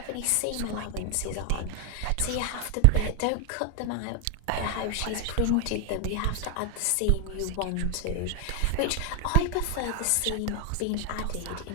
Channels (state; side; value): different; both; correlation 0.01